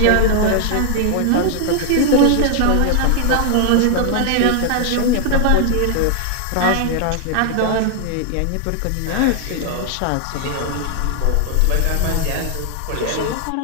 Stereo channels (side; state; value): both; different; correlation 0.00